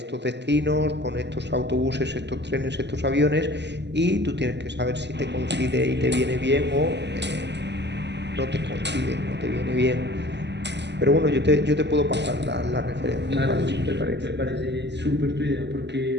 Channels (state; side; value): late; left; 0.50 ms